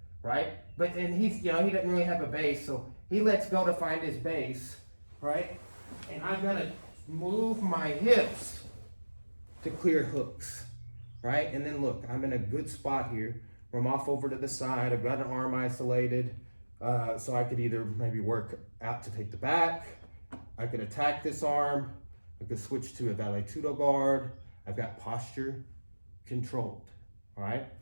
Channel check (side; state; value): both; inverted; correlation -1.00